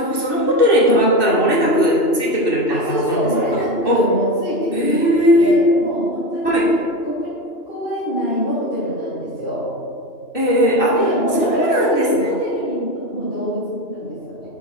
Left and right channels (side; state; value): right; late; 2.6 ms